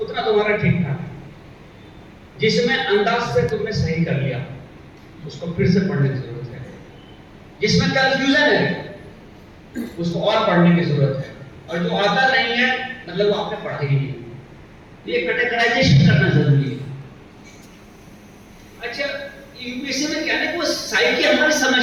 उतना तुम्हारा ठीक ठाक है। जिसमें अंदाज से तुमने सही कर लिया उसको फिर से पढ़ने की जरूरत है। जिसमें कंफ्यूजन है उसको और पढ़ने की जरूरत है, और जो आता नहीं है मतलब वो आपने पढ़ा ही नहीं। ये कैटेगराइजेशन करना जरूरी है। अच्छा, यूपीएससी में क्या है, वो साइकी हमारी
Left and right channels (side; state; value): both; identical; correlation 1.00